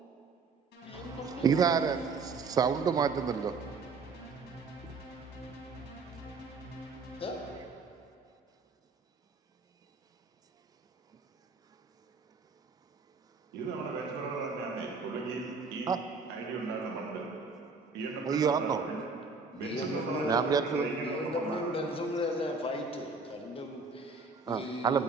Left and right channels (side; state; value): left; quieter; 4.3 dB